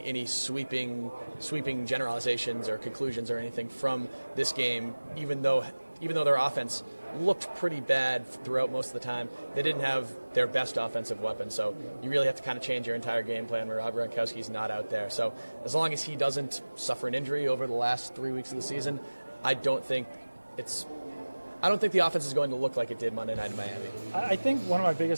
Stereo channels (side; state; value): both; inverted; correlation -1.00